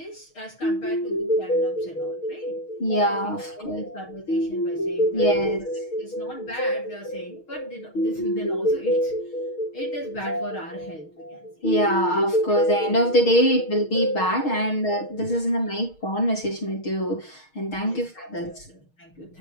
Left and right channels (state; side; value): late; right; 6.4 ms